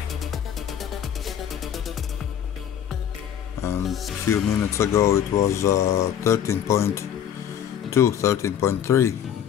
and a few minutes ago it was 13.3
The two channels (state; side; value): quieter; right; 9.4 dB